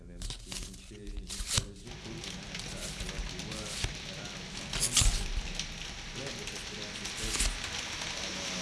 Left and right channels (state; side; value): identical; both; correlation 1.00